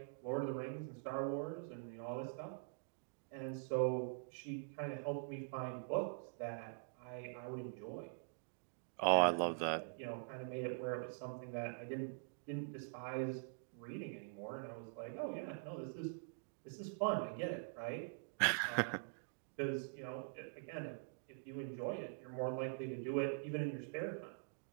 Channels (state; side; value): silent; left; digital silence